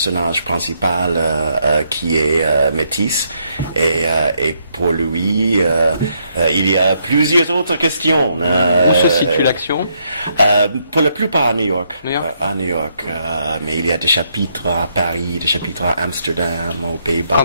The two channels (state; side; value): inverted; both; correlation -0.75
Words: principal qui est métis, et pour lui il y a plusieurs autres questions. Où se situe l'action? Pour la plupart à New York. À New York, mais il y a des chapitres à Paris, des chapitres à Amsterdam, aux